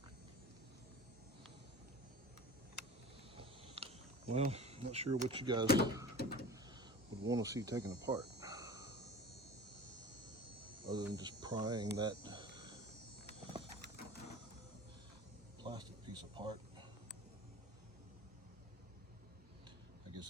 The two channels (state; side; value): normal; both; correlation 0.38